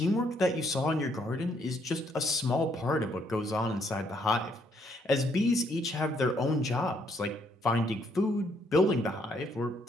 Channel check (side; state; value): both; normal; correlation 0.70